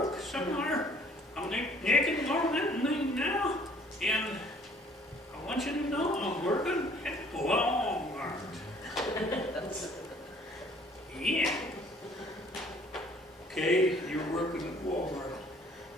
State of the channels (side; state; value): both; normal; correlation 0.57